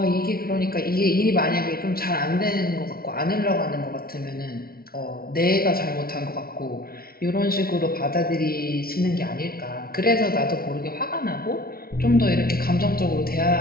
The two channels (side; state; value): right; late; 0.44 ms